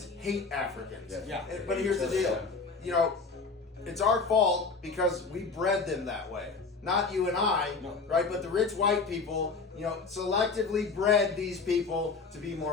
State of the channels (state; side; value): quieter; right; 4.5 dB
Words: hate Africans. Yes. Yeah. But here's the deal. You know, it's our fault because we bred them that way. Not you and I, No. right? But the rich white people, you know, selectively bred these people to be